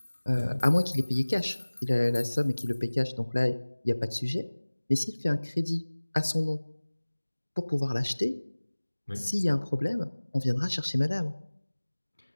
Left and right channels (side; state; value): both; inverted; correlation -1.00